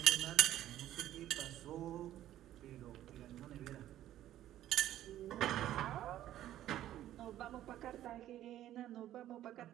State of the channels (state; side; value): quieter; left; 12.8 dB